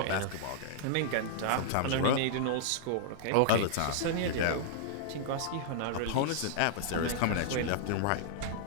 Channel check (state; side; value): different; both; correlation -0.01